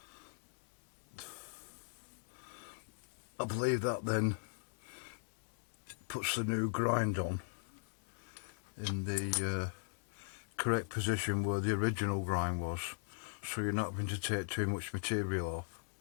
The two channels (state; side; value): silent; right; digital silence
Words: I believe that then puts the new grind on in the correct position where the original grind was, so you're not having to take too much material off